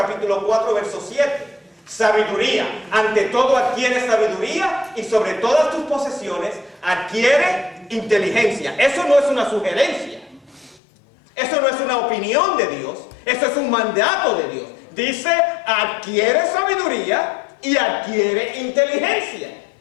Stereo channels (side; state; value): right; drops out; at 10.8 s